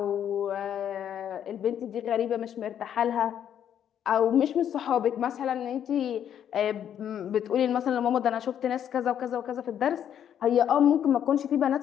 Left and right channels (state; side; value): quieter; right; 9.5 dB